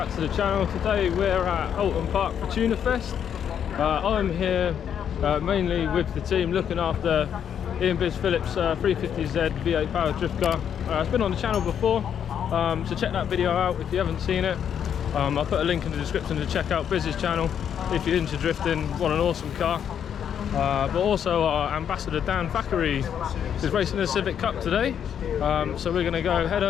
to the channel. Today we're at Oulton Park for Tuna Fest. I'm here mainly with the team looking after Ian Biz Phillips 350Z V8 powered drift car. It's been on the channel before, so check that video out if you haven't seen it. I'll put a link in the description to check out Biz's channel if you're into drifting, want an awesome car. But also our ambassador Dan Thackeray is racing the Civic Cup today, so we're going to go head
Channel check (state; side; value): quieter; right; 8.6 dB